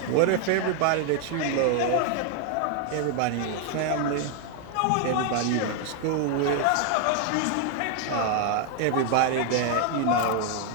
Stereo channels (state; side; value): different; both; correlation 0.00